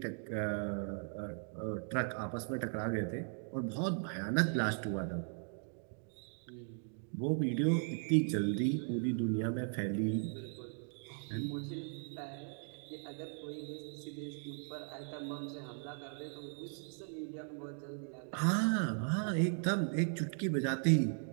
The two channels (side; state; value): left; silent; 52 dB below the other